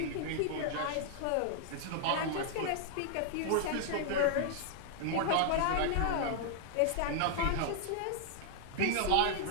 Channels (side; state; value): both; different; correlation 0.00